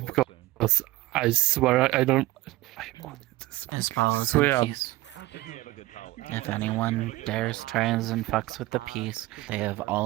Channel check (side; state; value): left; quieter; 18.2 dB